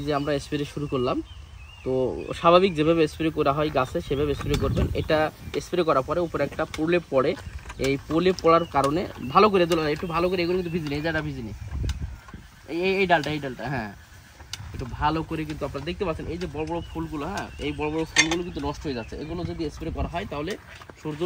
যে আমরা স্প্রে শুরু করলাম, তো স্বাভাবিক যেভাবে স্প্রে করা হয় গাছে সেভাবে স্প্রে করবেন। এটা স্প্রে করার পরে উপরে একটা প্রলেপ পড়ে, এই প্রলেপ পড়ার কারণে ভালো করে দোলা, একটু ভালো করে, এগুলো কিন্তু ভিজিনি, এই জায়গাটা ভিজিনি, এই ডালটা হ্যাঁ, একটু ভালো করে কিন্তু আপনারা দেখতে পাচ্ছেন এই যে বড় বড় ফুলগুলো, হ্যাঁ এই বড় বড় ফুলগুলো কিন্তু নষ্ট হয়ে যাচ্ছে। এগুলো যদি স্প্রে করা হয় তাহলে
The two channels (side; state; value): both; identical; correlation 1.00